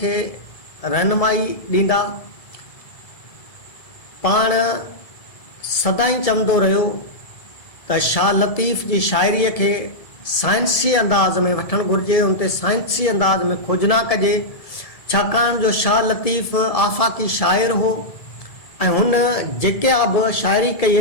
रहनुमाई ॾींदा। पाण सदाई चवंदो रहियो त शाह लतीफ़ जी शाइरीअ खे साइंसी अंदाज़ में वठणु घुरिजे, उन ते साइंसी अंदाज़ में खोजना कजे, छाकाणि जो शाह लतीफ़ आफ़ाक़ी शाइर हो ऐं हुन जेके बि शाइरी कई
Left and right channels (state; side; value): late; right; 1.7 ms